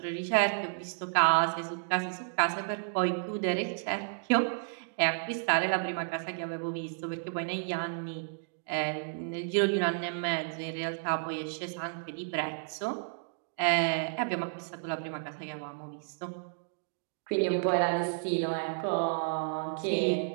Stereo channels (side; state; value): left; silent; digital silence